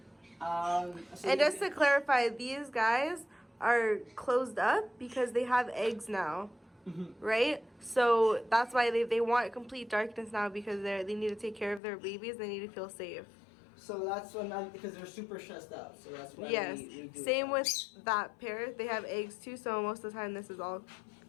And just to clarify, these guys are closed up because they have eggs now. Right? So that's why they want complete darkness now, because they need to take care of their babies. They need to feel safe. So that's because they're super stressed out. So that's why we do Same with that pair. They have eggs too, so most of the time this is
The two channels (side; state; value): right; drops out; at 11.8 s